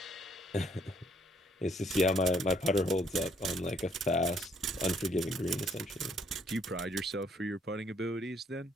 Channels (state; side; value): normal; both; correlation 0.66